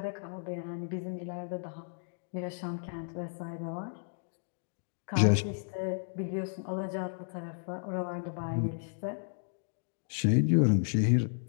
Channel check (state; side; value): silent; right; digital silence